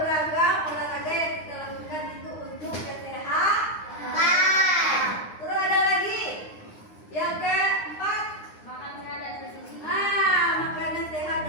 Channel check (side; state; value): right; late; 9.7 ms